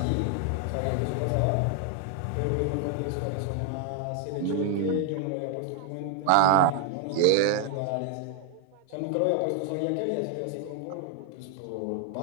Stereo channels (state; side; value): different; both; correlation 0.00